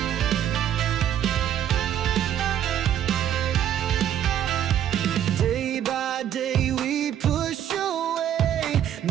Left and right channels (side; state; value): left; quieter; 10.4 dB